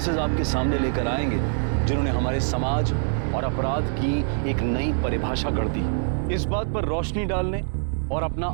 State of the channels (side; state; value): left; silent; digital silence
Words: आपके सामने लेकर आएंगे जिन्होंने हमारे समाज और अपराध की एक नई परिभाषा गढ़ दी। इस बात पर रोशनी डालने और अपना